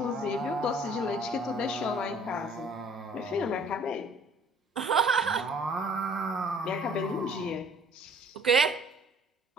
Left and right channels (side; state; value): both; normal; correlation 0.54